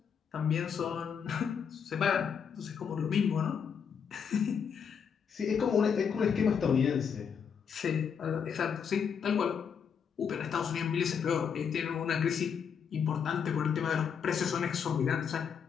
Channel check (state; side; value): quieter; right; 7.0 dB